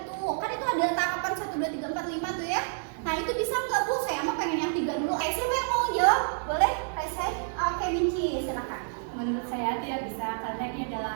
Kan itu ada tahapan 1, 2, 3, 4, 5 tuh ya. Nah, itu bisa enggak Bu? Saya mah pengen yang 3 dulu. Siapa yang mau jawab? Boleh? Raisai? Oke, Minci, silakan. Menurut saya tidak bisa karena ini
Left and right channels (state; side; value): silent; left; digital silence